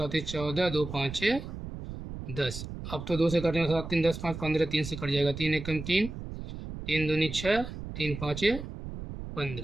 14, 2 5 10। अब तो 2 से काटेंगे, 7 3 10 5 15, 3 से कट जाएगा, 3 1 3, 3 दूनी 6, 3 5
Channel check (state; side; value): noise; right; rumble, 9 dB below the sound